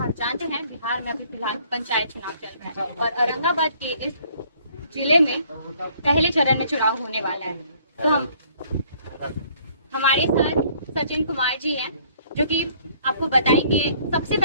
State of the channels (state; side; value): inverted; both; correlation -0.60